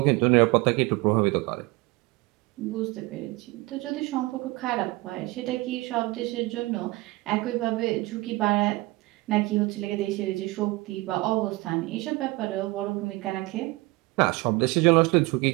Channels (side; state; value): left; quieter; 22.1 dB